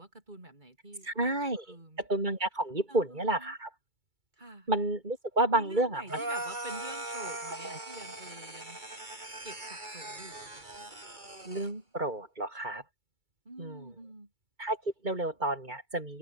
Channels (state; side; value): late; left; 2.3 ms